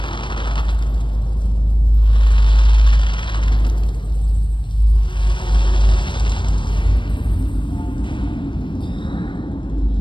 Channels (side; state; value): right; late; 0.23 ms